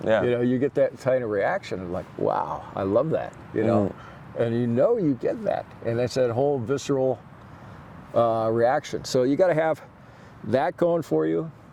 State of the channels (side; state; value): both; identical; correlation 1.00